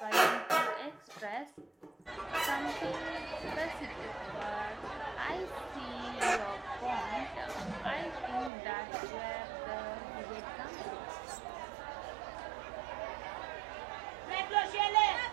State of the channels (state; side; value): drops out; left; at 8.5 s